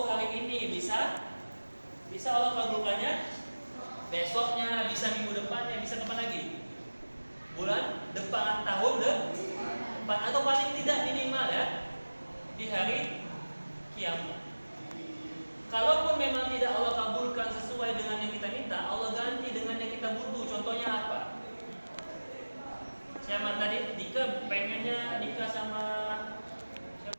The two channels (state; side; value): inverted; both; correlation -1.00